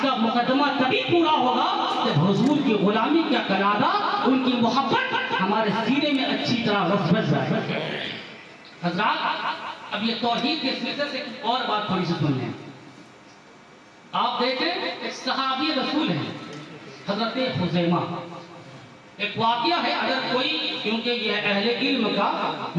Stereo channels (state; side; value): identical; both; correlation 1.00